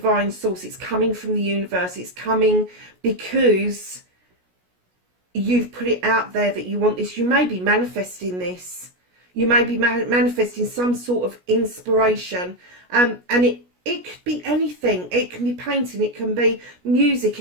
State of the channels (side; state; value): left; late; 17 ms